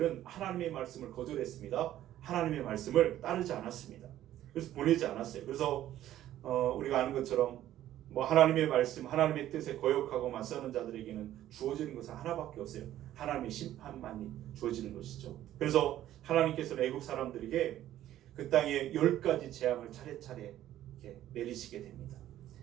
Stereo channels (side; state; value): left; quieter; 12.9 dB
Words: 하나님의 말씀을 거절했습니다. 하나님의 말씀을 따르지 않았습니다. 그래서 보내지 않았어요. 그래서 우리가 아는 것처럼 하나님의 말씀, 하나님의 뜻에 거역하고 맞서는 자들에게는 주어지는 것은 하나밖에 없어요. 하나님의 심판만이 주어지는 것이죠. 그래서 하나님께서는 애굽 사람들에게 그 땅에 10가지 재앙을 차례차례 이렇게 내리시게 됩니다.